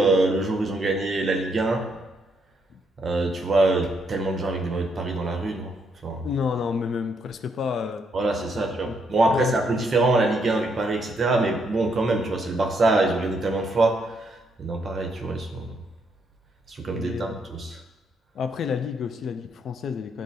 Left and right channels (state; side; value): normal; both; correlation 0.75